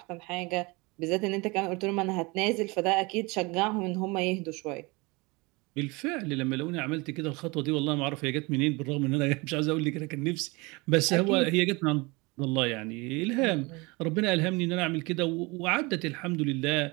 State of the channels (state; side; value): quieter; left; 25.8 dB